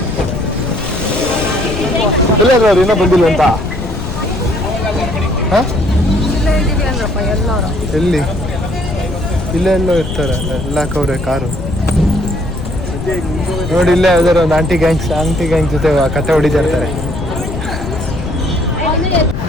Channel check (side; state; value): left; noise; rumble, 6 dB below the sound